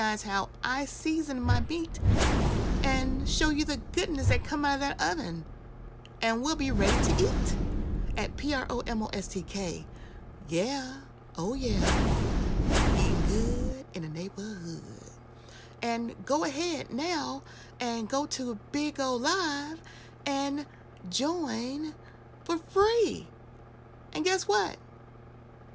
how I season my meat and show you the goodness that come out of that oven. And we'll be ready to eat at PROMOSTK. Yeah, oh yeah. Good in the neighborhood. And go ahead now and go to BIGO Live and join for free. And guess what?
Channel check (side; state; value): both; identical; correlation 1.00